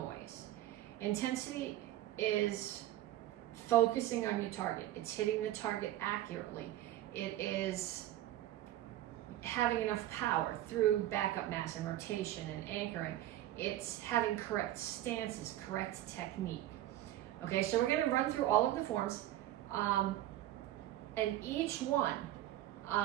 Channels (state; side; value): quieter; left; 14.0 dB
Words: Intensity is focusing on your target. It's hitting the target accurately. It is having enough power through backup mass and rotation and anchoring. It's having correct stances, correct technique. Okay, so we're going to run through all of the forms, and each one,